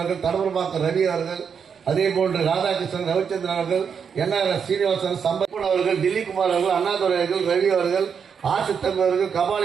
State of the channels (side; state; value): left; quieter; 6.8 dB